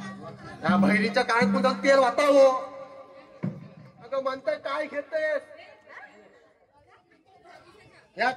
या बहिणीच्या काळात पुन्हा तेल वाटावं. अगं म्हणताय काय घेतेस? या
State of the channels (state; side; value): identical; both; correlation 1.00